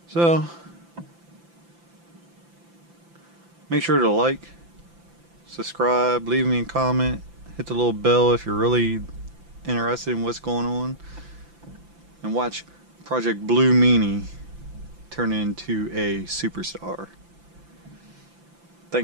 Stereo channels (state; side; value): late; left; 5.9 ms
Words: So, make sure to like, subscribe, leave me a comment, hit the little bell if you're really interested in what's going on, and watch Project Blue Meanie turn into a superstar.